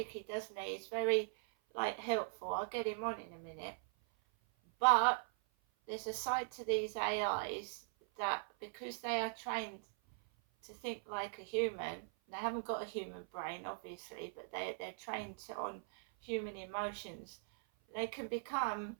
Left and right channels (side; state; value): left; silent; 51 dB below the other